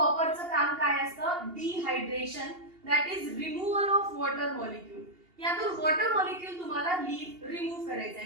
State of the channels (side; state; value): left; late; 2.8 ms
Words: काम काय असतं dehydration, that is removal of water molecule. यातून वॉटर मॉलिक्यूल तुम्हाला रिमूव्ह करायचं